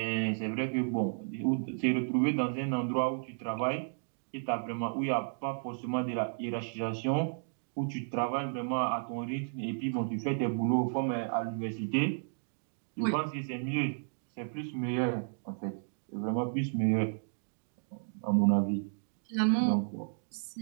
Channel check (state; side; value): silent; left; digital silence